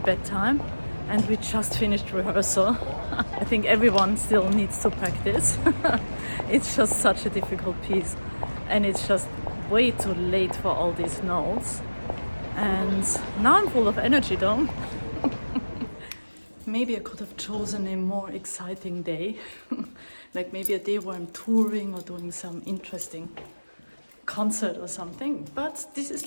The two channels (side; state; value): both; inverted; correlation -1.00